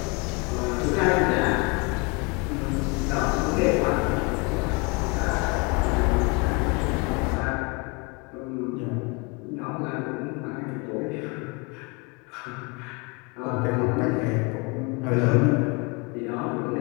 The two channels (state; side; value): quieter; right; 30.2 dB